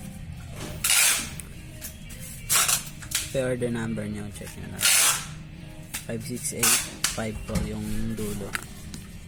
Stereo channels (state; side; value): identical; both; correlation 1.00